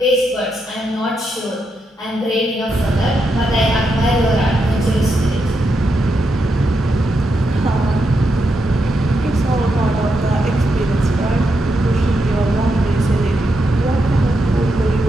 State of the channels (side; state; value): both; normal; correlation 0.83